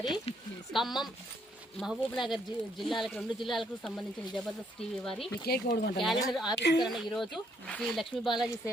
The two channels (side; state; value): both; normal; correlation 0.70